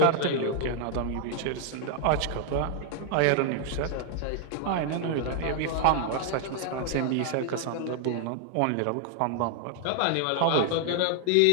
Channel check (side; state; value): both; different; correlation 0.00